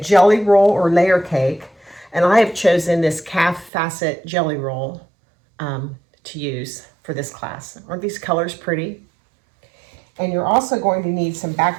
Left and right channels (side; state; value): left; drops out; at 3.7 s